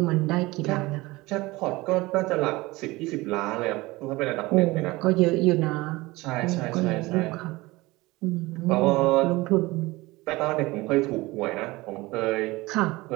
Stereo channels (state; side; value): quieter; left; 21.1 dB